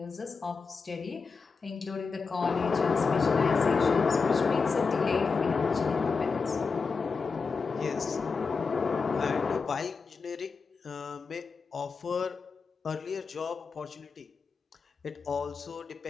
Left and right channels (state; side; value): quieter; right; 4.9 dB